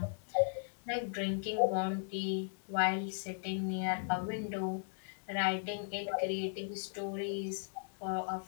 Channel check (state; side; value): silent; right; digital silence